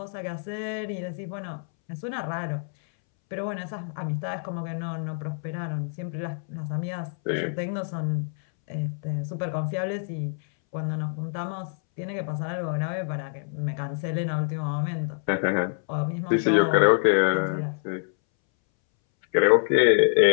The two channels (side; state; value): right; silent; 61 dB below the other